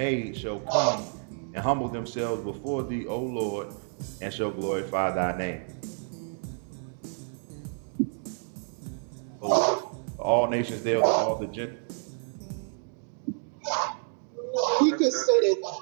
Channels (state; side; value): silent; left; 56 dB below the other